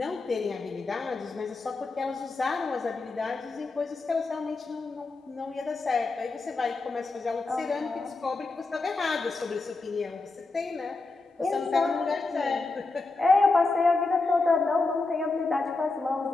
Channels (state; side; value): quieter; right; 3.7 dB